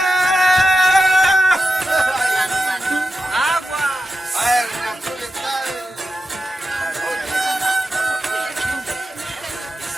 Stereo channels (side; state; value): both; normal; correlation 0.90